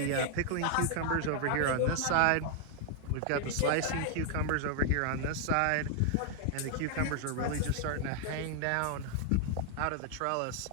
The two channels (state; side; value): different; both; correlation 0.00